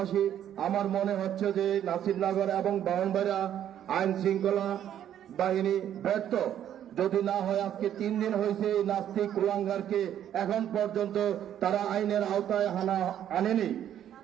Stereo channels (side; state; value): left; quieter; 10.5 dB